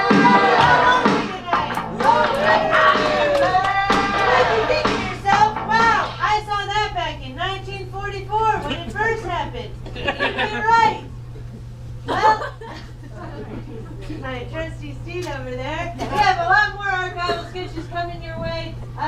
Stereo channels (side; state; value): both; identical; correlation 1.00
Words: My trusty Steve over there. We have a lot more archival sketches coming your way.